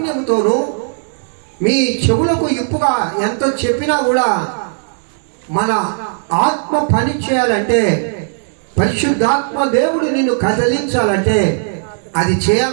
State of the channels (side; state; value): left; silent; digital silence